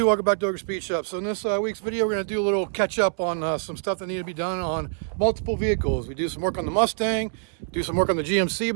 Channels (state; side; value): silent; left; 62 dB below the other